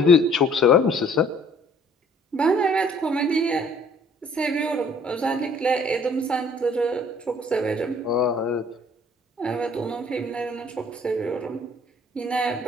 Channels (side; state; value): both; normal; correlation 0.57